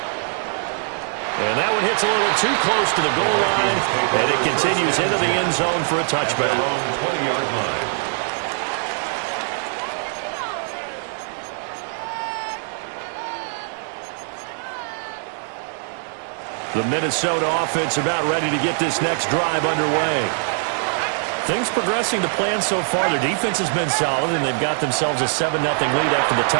And that one hits a little too close to the goal line, and it continues into the end zone for a touchback. 20-yard line. The Minnesota offense about ready to get this next drive underway. Things progressing to plan so far. Their defense has been solid, and they've got themselves a 7-0 lead after the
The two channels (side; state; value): left; silent; 56 dB below the other